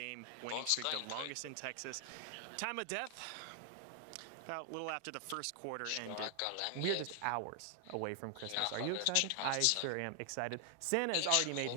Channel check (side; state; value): both; different; correlation 0.00